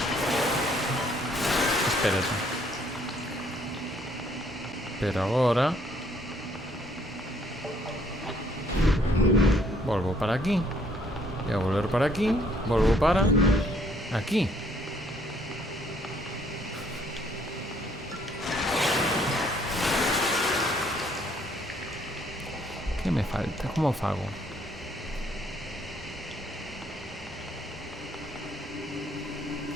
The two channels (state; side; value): normal; both; correlation 0.65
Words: Espérate. Pero agora... Volvo para aquí. E a volver para aquí. Volvo para... aquí. Que me falta? Como fago?